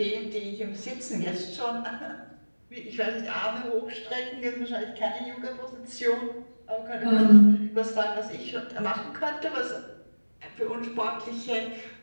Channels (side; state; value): both; inverted; correlation -1.00